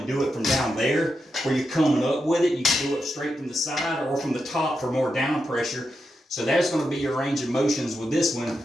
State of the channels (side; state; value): both; normal; correlation 0.86